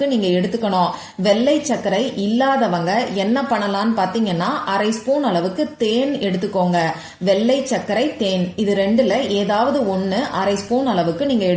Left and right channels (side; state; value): both; identical; correlation 1.00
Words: நீங்க எடுத்துக்கணும். வெள்ளை சர்க்கரை இல்லாதவங்க என்ன பண்ணலாம்னு பாத்தீங்கன்னா, அரை ஸ்பூன் அளவுக்கு தேன் எடுத்துக்கோங்க. வெள்ளை சர்க்கரை, தேன், இது ரெண்டுல ஏதாவது ஒன்னு அரை ஸ்பூன் அளவுக்கு நீங்க